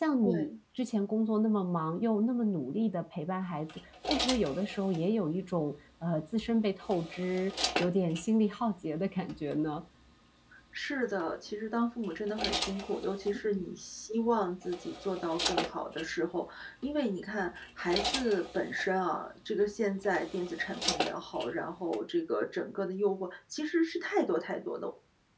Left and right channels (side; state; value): both; identical; correlation 1.00